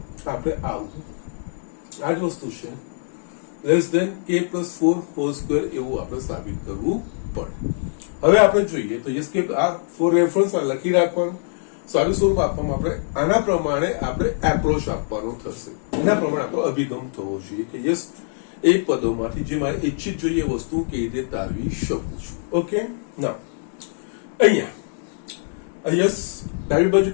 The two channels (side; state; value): right; silent; digital silence